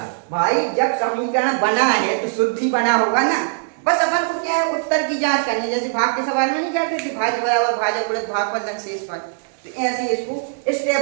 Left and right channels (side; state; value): left; silent; digital silence